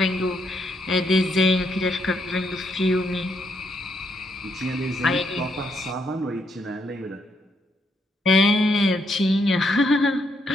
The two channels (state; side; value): normal; both; correlation 0.76